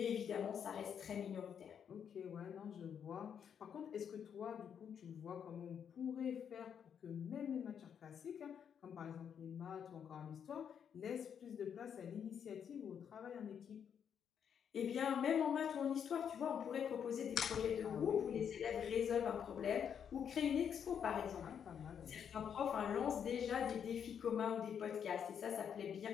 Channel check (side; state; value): right; quieter; 8.0 dB